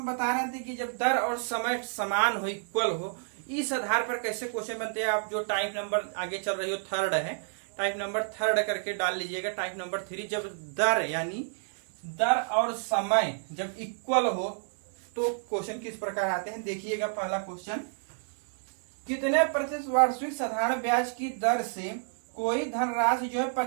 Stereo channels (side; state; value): left; silent; digital silence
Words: बता रहे थे कि जब दर और समय समान हो, इक्वल हो, इस आधार पर कैसे क्वेश्चन बनते हैं। आप जो टाइप नंबर आगे चल रही हो थर्ड है, टाइप नंबर थर्ड करके डाल लीजिएगा। टाइप नंबर 3, जब दर यानी दर और समय जब इक्वल हो तो क्वेश्चन किस प्रकार आते हैं, देखिएगा। पहला क्वेश्चन, कितने प्रतिशत वार्षिक साधारण ब्याज की दर से कोई धनराशि जो है